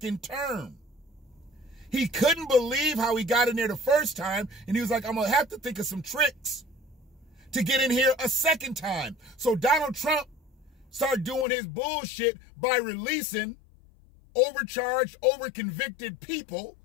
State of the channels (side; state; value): right; drops out; at 11.5 s